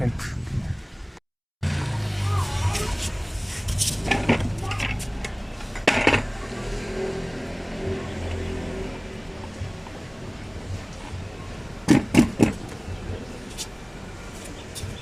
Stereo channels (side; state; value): both; identical; correlation 1.00